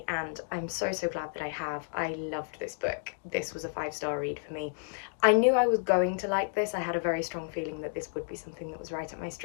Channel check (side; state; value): right; silent; digital silence